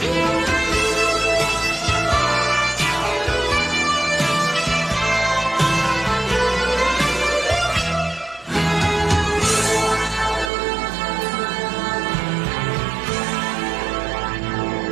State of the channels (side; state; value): left; drops out; at 10.5 s